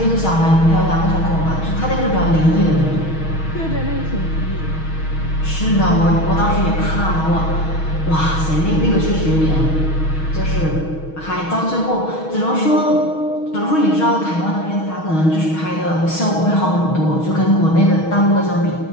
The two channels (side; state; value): right; late; 6.3 ms